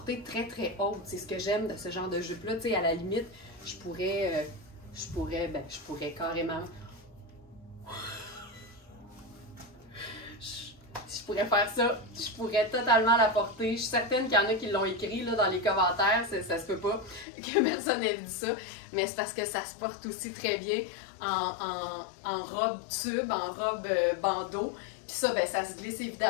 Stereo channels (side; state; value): right; drops out; at 17.2 s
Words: très très haute. C'est ce que j'aime de ce genre de jupe-là. À la limite, je pourrais carrément... Je pourrais faire ça, je pourrais totalement la porter. Je suis certaine qu'il y en a qui l'ont écrit là, dans les commentaires, ça se peut pas que personne ait dit ça, mais c'est parce que ça se porte aussi très bien en robe tube, en robe bandeau. Puis ça, ben, ça se glisse